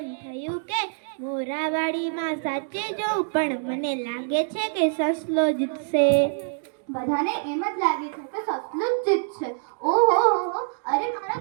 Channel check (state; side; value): silent; left; digital silence